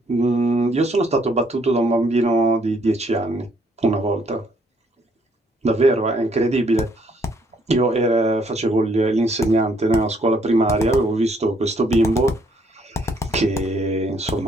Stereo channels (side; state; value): both; normal; correlation 0.68